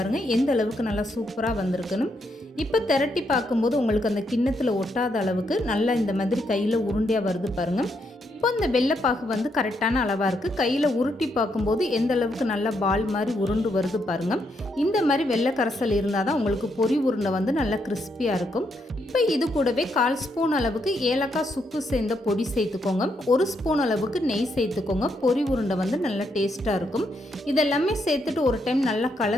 எந்த அளவுக்கு நல்லா சூப்பராக வந்திருக்குன்னு. இப்போ திரட்டி பார்க்கும்போது உங்களுக்கு அந்த கிண்ணத்தில் ஒட்டாத அளவுக்கு நல்லா இந்த மாதிரி கையில் உருண்டையாக வருது பாருங்கள். இப்போ இந்த வெள்ளைப்பாகு கரெக்டான அளவாக இருக்குது. கையில் உருட்டி பார்க்கும்போது எந்த அளவுக்கு நல்லா பால் மாதிரி உருண்டு வருது பாருங்கள். இந்த மாதிரி வெள்ளை கரைசல் இருந்தால் தான் உங்களுக்கு பொரி உருண்டை நல்லா கிறிஸ்பியாக இருக்கும். இப்போ இது கூடவே 1/4 ஸ்பூன் அளவுக்கு ஏலக்காய் சுக்கு சேர்ந்த பொடி சேர்த்துக்கோங்க. 1 ஸ்பூன் அளவுக்கு நெய் சேர்த்துக்கோங்க. பொரி உருண்டை நல்லா டேஸ்ட்டாக இருக்கும். இதெல்லாமே சேர்த்துட்டு ஒரு டைம் நல்லா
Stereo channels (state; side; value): normal; both; correlation 0.78